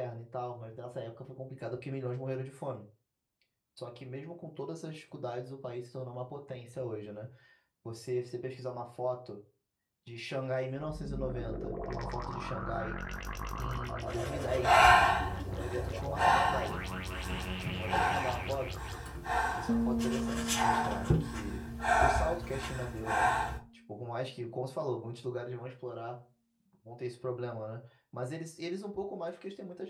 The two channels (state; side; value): identical; both; correlation 1.00